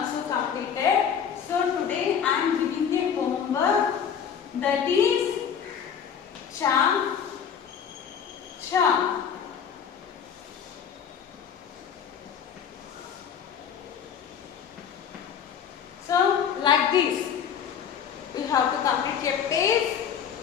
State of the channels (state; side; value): quieter; right; 7.8 dB